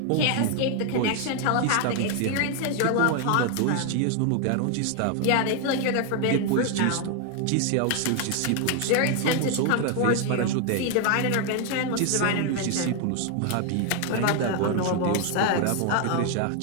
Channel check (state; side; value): different; both; correlation 0.01